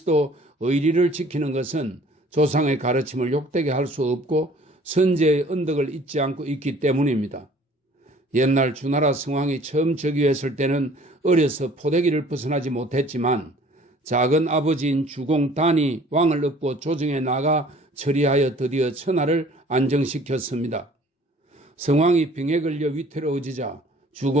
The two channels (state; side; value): normal; both; correlation 0.53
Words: 의리를 지키는 것은 조상의 가르침을 욕되게 할 수 없고 선제의 언덕을 잊지 않고 있기 때문입니다. 옛날 주나라 성왕이 처음 즉위했을 때는 어려서 포대기를 벗어나지 못했지만 작은 아버지인 주공단이 왕을 얻고 조정에 나가 처리하여 드디어 천하를 안정시켰습니다. 성왕이 병에 걸려 위태로워지자